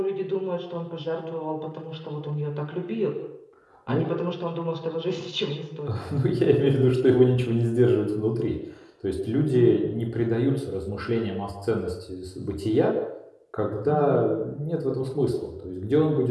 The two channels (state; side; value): identical; both; correlation 1.00